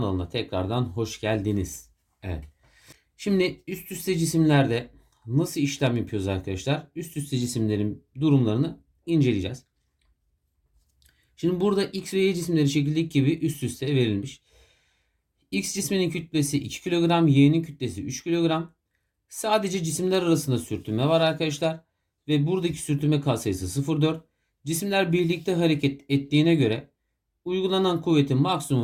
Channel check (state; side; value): identical; both; correlation 1.00